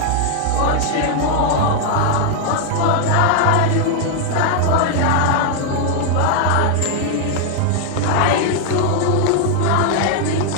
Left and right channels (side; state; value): both; different; correlation 0.00